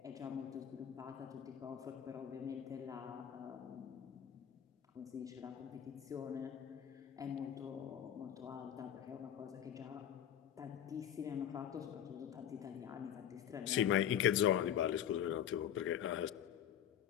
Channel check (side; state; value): right; quieter; 10.0 dB